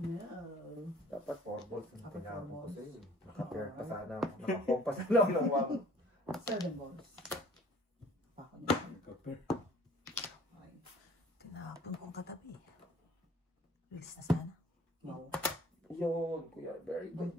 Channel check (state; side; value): normal; both; correlation 0.52